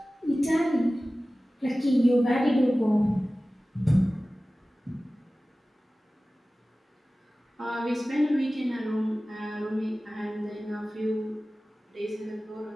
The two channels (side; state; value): both; normal; correlation 0.97